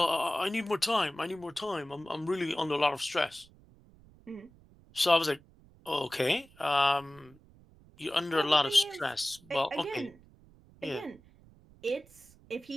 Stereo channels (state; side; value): noise; right; rumble, 26 dB below the sound